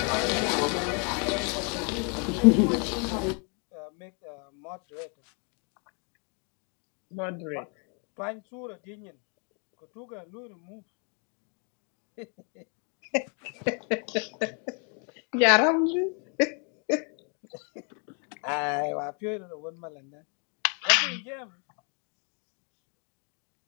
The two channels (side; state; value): right; quieter; 37.1 dB